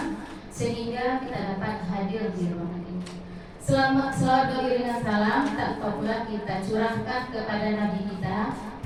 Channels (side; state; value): both; identical; correlation 1.00